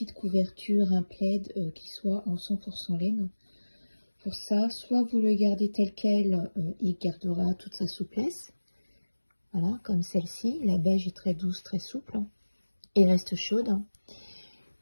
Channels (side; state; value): both; inverted; correlation -1.00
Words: couverture, un plaid qui soit en 100% laine. Pour ça, soit vous le gardez tel quel, il gardera toute sa souplesse. Voilà, comme celle-ci. La beige est très douce, très souple et reste chaude.